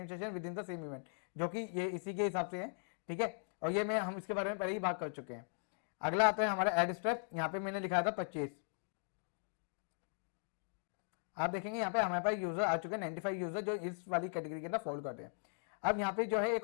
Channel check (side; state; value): right; silent; digital silence